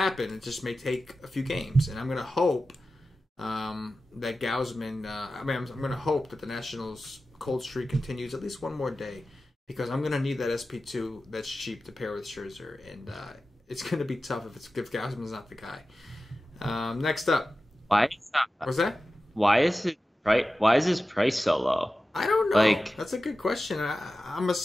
It just may take a few games. And I'm going to hope that Gausman... I'm going to hope that the Nationals' cold streak continues at least one more day, because I'm going to need that SP2 that's cheap to pair with Scherzer. And it's going to be tough if Gausman's not the guy. Next up. Why is that? What's that? Why is his price so low? I don't know. Like, that's a good question. I'm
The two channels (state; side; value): normal; both; correlation 0.94